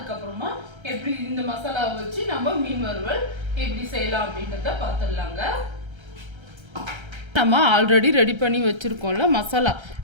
எப்படி இந்த மசாலாவை வச்சு நம்ம மீன் வறுவல் எப்படி செய்யலாம் அப்படின்றத பார்த்துடலாங்க. நம்ம ஆல்ரெடி ரெடி பண்ணி வச்சுருக்கோம்ல மசாலா,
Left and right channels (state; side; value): late; left; 1.3 ms